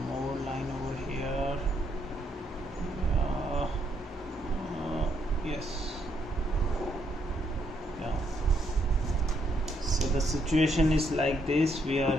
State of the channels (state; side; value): normal; both; correlation 0.74